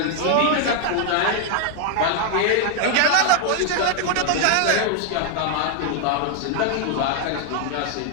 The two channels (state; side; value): different; both; correlation 0.00